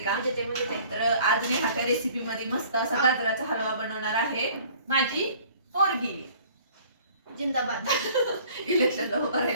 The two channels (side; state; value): both; inverted; correlation -0.52